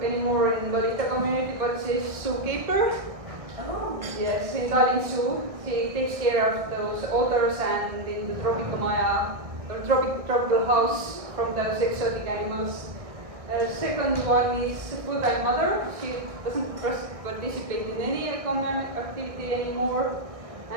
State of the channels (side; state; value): left; late; 1.6 ms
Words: anymore in Lolita community, but she's zookeeper. Oh. Yes, in Tallinn Zoo. She takes care of those otters and in the tropical house from those exotic animals. Second one is full-time mother. She doesn't participate in any economic activity anymore.